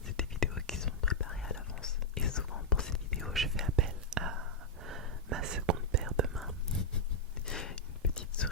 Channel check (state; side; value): normal; both; correlation -0.05